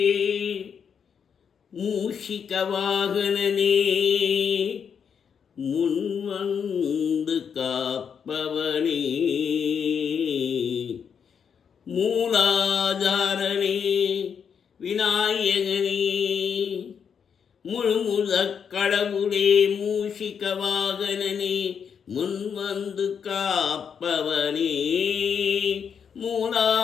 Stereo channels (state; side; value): quieter; right; 7.1 dB